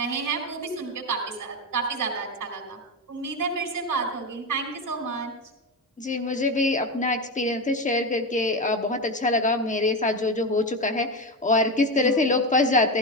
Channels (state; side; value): normal; both; correlation 0.16